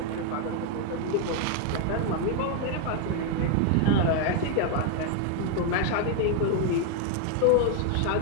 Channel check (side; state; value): both; different; correlation 0.01